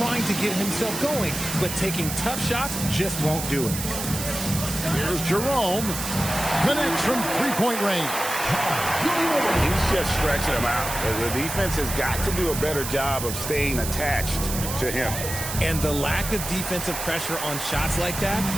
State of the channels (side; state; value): right; noise; hiss, 6 dB below the sound